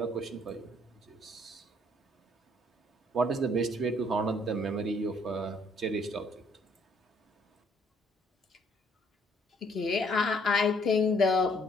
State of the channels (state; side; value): normal; both; correlation 0.65